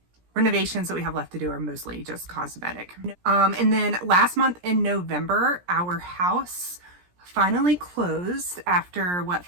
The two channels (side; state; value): left; late; 17 ms